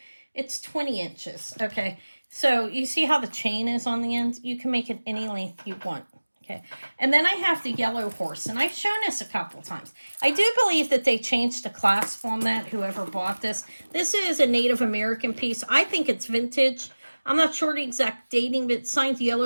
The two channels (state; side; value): inverted; both; correlation -1.00